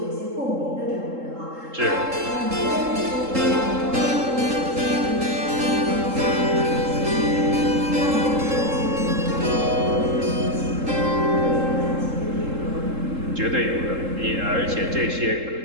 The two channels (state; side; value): late; left; 3.7 ms